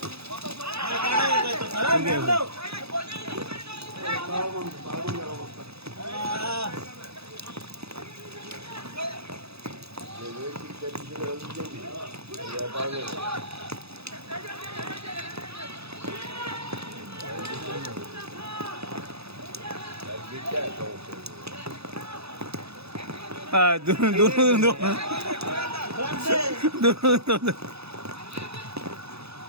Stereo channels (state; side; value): late; left; 0.79 ms